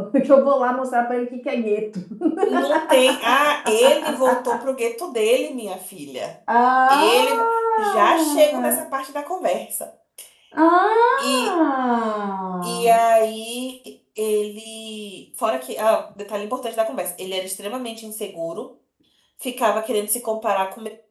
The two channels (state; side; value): identical; both; correlation 1.00